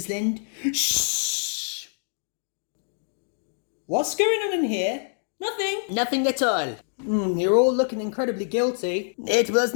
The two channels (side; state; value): right; silent; digital silence